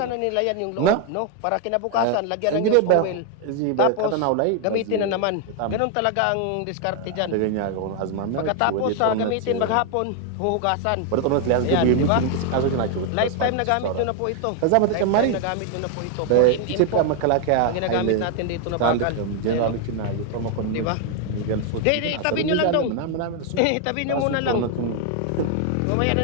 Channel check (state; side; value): different; both; correlation 0.00